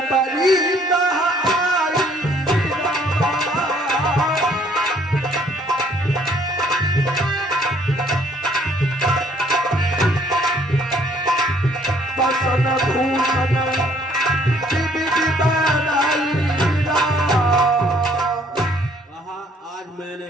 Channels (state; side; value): normal; both; correlation 0.62